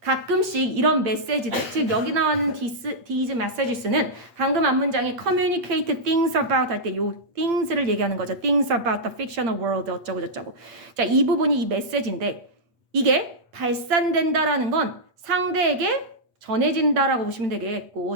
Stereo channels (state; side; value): late; left; 8.4 ms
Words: 이런 메시지들, 즉 여기 나오는 these messages는 방금 앞 문장에 communicate things about 할 때 요 things를 얘기하는 거죠. things about the fictional world 어쩌고 저쩌고. 자, 이 부분이 이 메시지인데 이게 발산된다라는 건 상대에게 전해진다라고 보시면